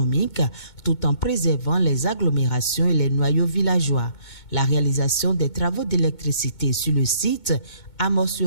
tout en préservant les agglomérations et les noyaux villageois. La réalisation des travaux d'électricité sur le site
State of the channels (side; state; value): right; late; 2.2 ms